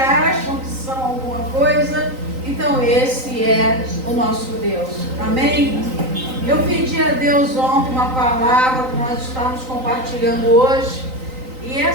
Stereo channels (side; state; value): left; late; 3.9 ms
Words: que são alguma coisa. Então esse é o nosso Deus. Amém? Eu pedi a Deus ontem uma palavra que nós estamos compartilhando hoje. E